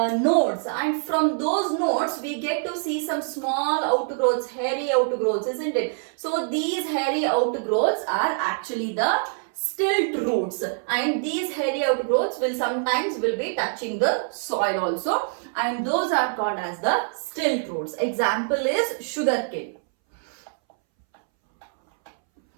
nodes, and from those nodes we get to see some small outgrowths, hairy outgrowths, isn't it? So these hairy outgrowths are actually the stilt roots, and these hairy outgrowths will sometimes be touching the soil also, and those are called as the stilt roots. Example is sugarcane.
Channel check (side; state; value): left; silent; 62 dB below the other